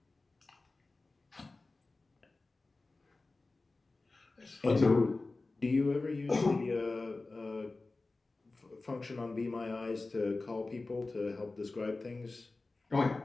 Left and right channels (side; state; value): right; quieter; 3.4 dB